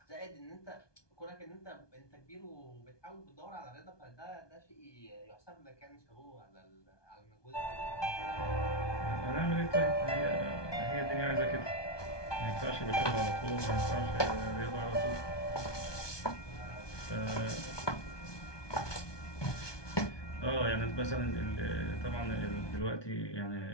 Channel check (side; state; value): right; late; 1.2 ms